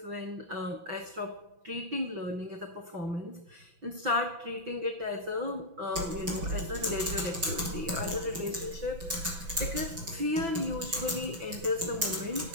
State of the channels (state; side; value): late; left; 6.0 ms